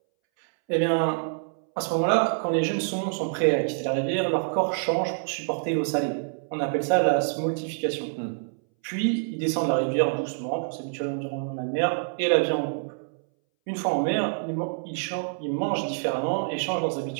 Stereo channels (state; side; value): silent; left; 61 dB below the other